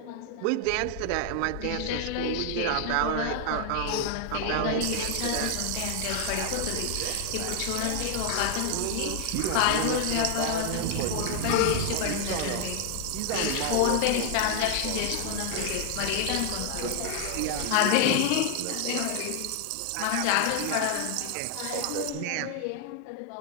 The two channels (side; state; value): both; different; correlation 0.00